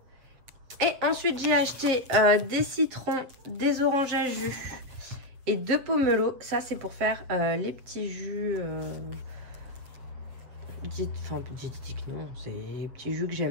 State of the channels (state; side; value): late; left; 7.8 ms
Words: Et ensuite, j'ai acheté des citrons, des oranges à jus et 2 pomelos. Ça, c'est pour faire les petits jus... Enfin, diététiques, non. C'est les petits jus que